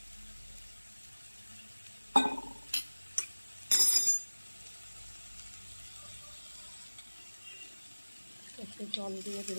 একটু জল দিয়ে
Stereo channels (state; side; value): inverted; both; correlation -1.00